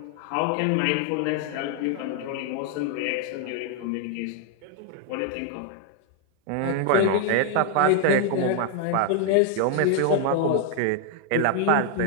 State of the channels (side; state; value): both; different; correlation 0.00